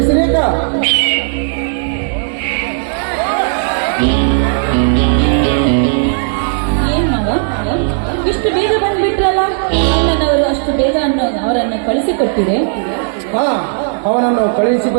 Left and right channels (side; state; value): left; silent; digital silence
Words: ಏನ್ ಮಾವ ಇಷ್ಟು ಬೇಗ ಬಂದ್ಬಿಟ್ರಲ್ಲ? ಅಣ್ಣನವರು ಅಷ್ಟು ಬೇಗ ಅವರನ್ನು ಕಳಿಸಿಕೊಟ್ಟಿದೆ. ಹಾ, ಅವನನ್ನು ಕಳುಹಿಸಿ